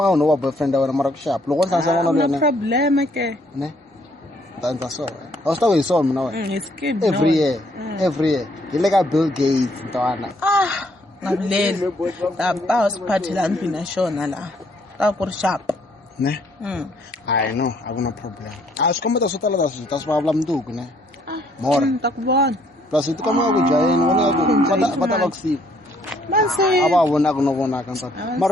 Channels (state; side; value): normal; both; correlation 0.66